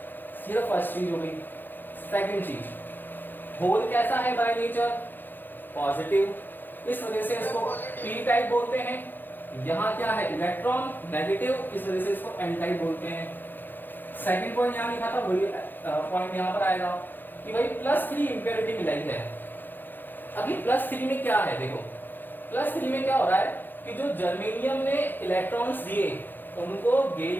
ये फर्स्ट चीज हो गई। सेकंड चीज, होल कैसा है बाय नेचर, पॉजिटिव, इस वजह से इसको पी टाइप बोलते हैं। यहां क्या है, इलेक्ट्रॉन नेगेटिव, इस वजह से इसको एन टाइप बोलते हैं। सेकंड पॉइंट यहां लिखा था, वही पॉइंट यहां पर आएगा कि भाई +3 इंप्योरिटी मिलाई है। अभी +3 में क्या है, देखो +3 में क्या हो रहा है कि जो जर्मेनियम ने इलेक्ट्रॉन्स दिए उनको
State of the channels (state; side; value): late; right; 0.091 ms